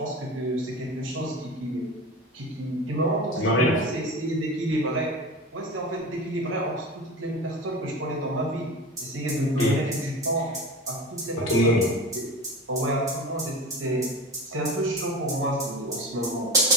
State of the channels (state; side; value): normal; both; correlation 0.30